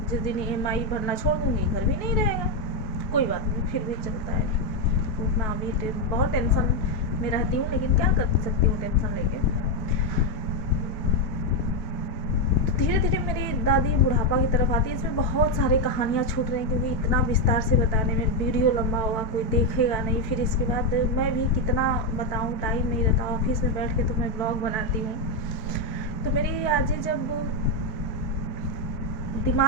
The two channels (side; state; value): right; late; 4.6 ms